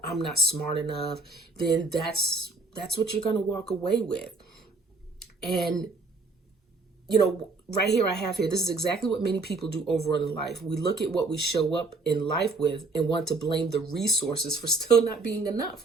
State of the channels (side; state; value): left; quieter; 3.5 dB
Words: I'm not smart enough, then that's what you're going to walk away with. And right here I have here, this is exactly what many people do overall in life. We look at what we show up in life with and want to blame the resources for still not being